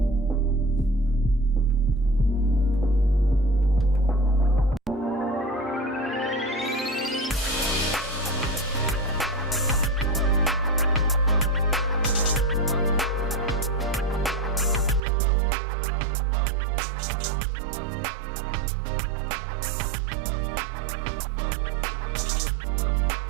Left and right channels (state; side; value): drops out; left; at 15.0 s